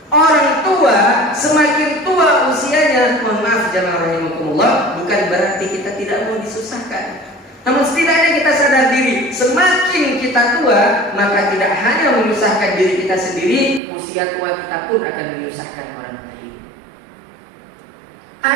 orang tua semakin tua usianya, mohon maaf jemaah rahimakumullah, bukan berarti kita tidak mau disusahkan. Namun setidaknya kita sadar diri, semakin kita tua, maka tidak hanya menyusahkan diri kita sendiri, usia tua kita pun akan menyusahkan orang lain.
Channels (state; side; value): drops out; left; at 13.8 s